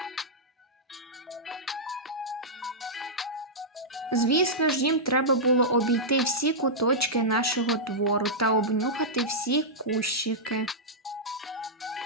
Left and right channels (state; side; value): normal; both; correlation -0.11